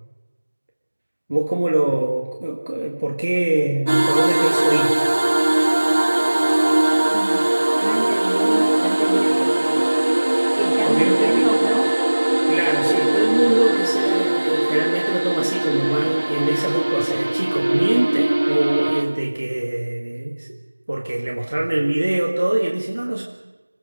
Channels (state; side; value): inverted; both; correlation -1.00